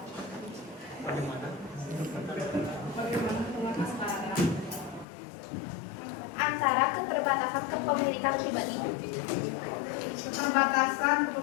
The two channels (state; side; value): drops out; right; at 5.1 s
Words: Antara keterbatasan kepemilikan pribadi. Keterbatasan